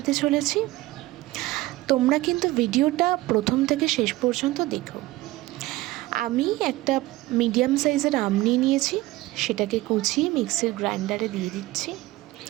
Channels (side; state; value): left; quieter; 18.4 dB